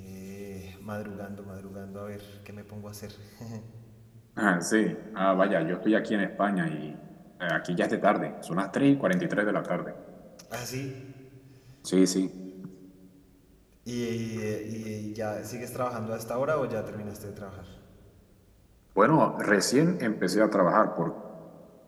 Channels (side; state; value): both; identical; correlation 1.00